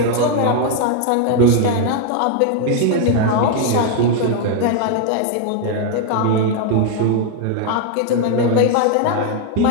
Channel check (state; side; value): different; both; correlation 0.00